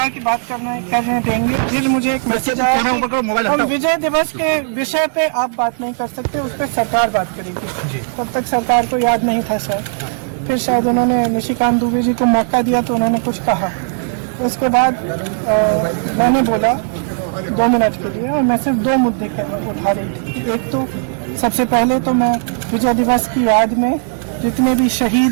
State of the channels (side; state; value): left; silent; 60 dB below the other